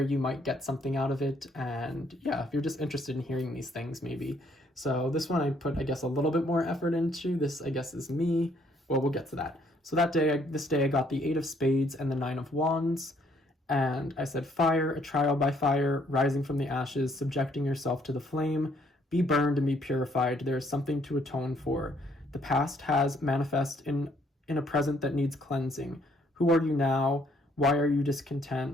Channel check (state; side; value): normal; both; correlation 0.66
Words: You might get something out of it, and yeah, if you're just interested in hearing these things, maybe. So this one I put, I guess, a little bit more effort into. This, I guess, is me. Well, we'll get to that. So this day I got the 8 of Spades and the 9 of Wands. And I said, fire, a trial by fire, rising from the ashes, subjecting yourself to the flame, be burned and be purified. There is something to atone for. The past has manifest in a present that needs cleansing. Who are you now? Why are you